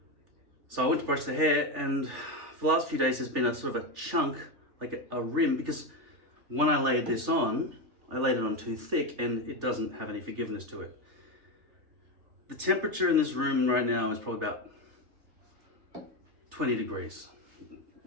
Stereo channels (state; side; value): late; left; 3.4 ms